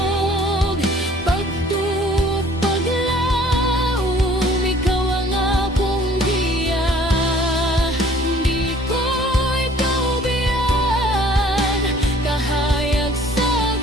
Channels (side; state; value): both; normal; correlation 0.54